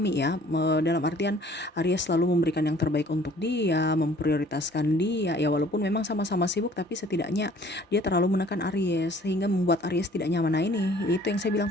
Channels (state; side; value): normal; both; correlation 0.54